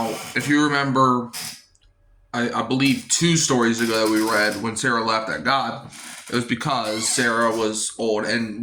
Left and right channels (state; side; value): identical; both; correlation 1.00